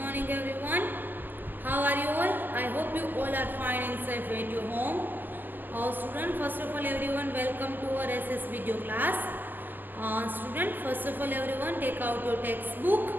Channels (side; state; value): left; late; 0.092 ms